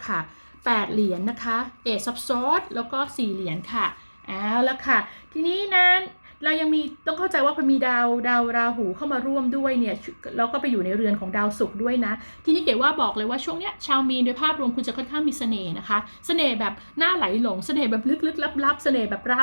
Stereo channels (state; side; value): inverted; both; correlation -1.00